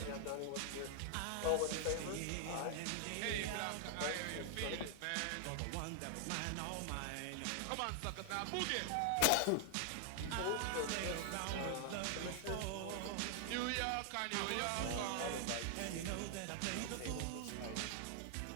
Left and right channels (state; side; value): different; both; correlation 0.00